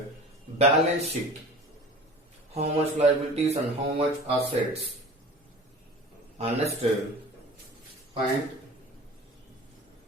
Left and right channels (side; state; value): both; normal; correlation 0.40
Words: balance sheet. How much liabilities and how much assets. And next point.